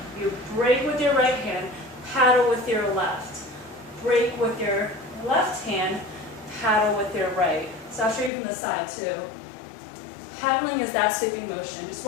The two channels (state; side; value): drops out; right; at 8.3 s